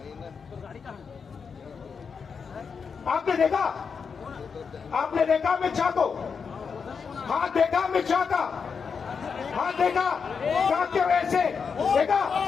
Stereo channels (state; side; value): quieter; right; 5.9 dB